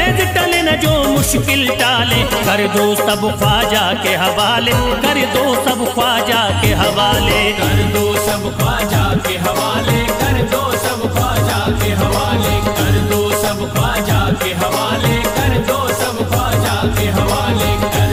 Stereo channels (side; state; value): both; identical; correlation 1.00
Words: टले न जो मुश्किल टाले। कर दो सब ख्वाजा के हवाले, कर दो सब ख्वाजा के हवाले। कर दो सब ख्वाजा के हवाले, कर दो सब ख्वाजा के हवाले, कर दो सब ख्वाजा के हवाले, कर दो सब ख्वाजा के हवाले,